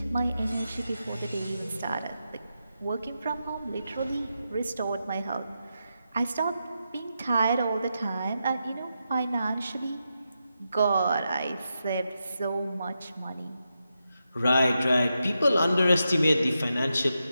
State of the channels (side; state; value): both; inverted; correlation -0.87